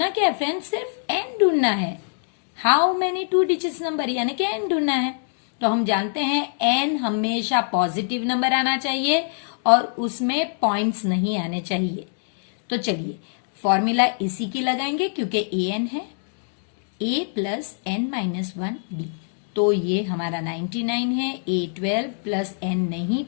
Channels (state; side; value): silent; right; digital silence